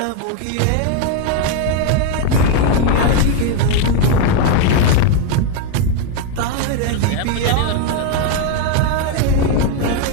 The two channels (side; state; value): both; different; correlation 0.01